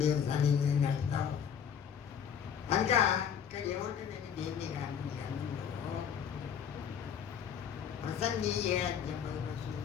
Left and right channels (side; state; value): right; quieter; 8.0 dB